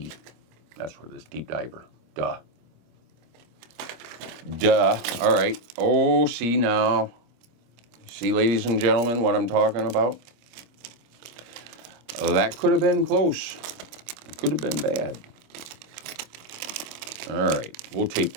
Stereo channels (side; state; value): left; late; 26 ms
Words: That's what it is, deep diver. Duh. All right. Oh, see now. See, ladies and gentlemen, what I'm talking about? That could have been close. It could have been bad. All right. We'll tape